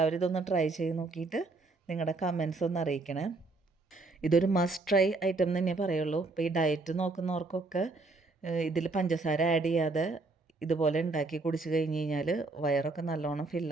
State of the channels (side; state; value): left; quieter; 3.4 dB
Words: ഇതൊന്ന് ട്രൈ ചെയ്ത് നോക്കിയിട്ട് നിങ്ങളുടെ കമൻസ് ഒന്ന് അറിയിക്കണേ. ഇതൊരു മസ്റ്റ് ട്രൈ ഐറ്റം തന്നെ പറയുള്ളൂ. ഇപ്പോൾ ഈ ഡയറ്റ് നോക്കുന്നവർക്കൊക്കെ ഇതിൽ പഞ്ചസാര ആഡ് ചെയ്യാതെ ഇതുപോലെ ഉണ്ടാക്കി കുടിച്ച് കഴിഞ്ഞ് കഴിഞ്ഞാൽ വയറൊക്കെ നല്ലോണം